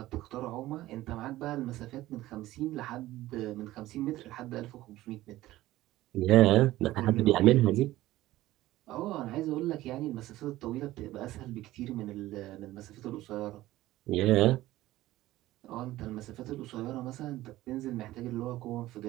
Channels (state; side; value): quieter; left; 16.2 dB